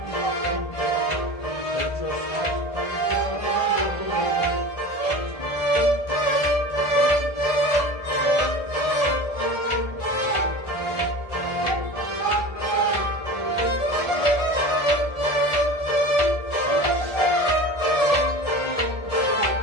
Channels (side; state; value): right; late; 1.4 ms